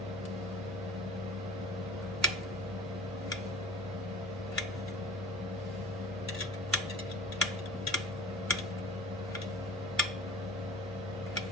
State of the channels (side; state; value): both; normal; correlation 0.41